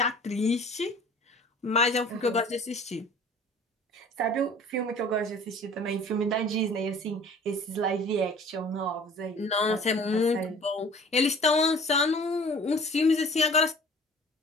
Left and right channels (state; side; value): normal; both; correlation 0.47